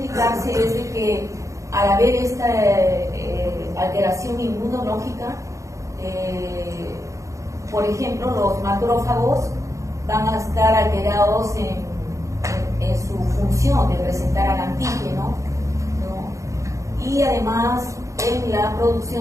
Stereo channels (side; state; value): left; late; 0.15 ms